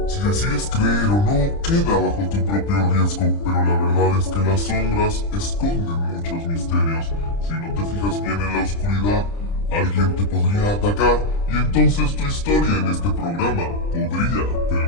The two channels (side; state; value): right; late; 30 ms